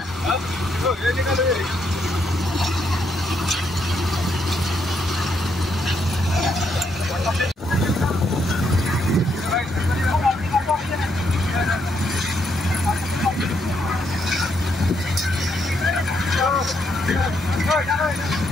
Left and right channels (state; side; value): normal; both; correlation 0.76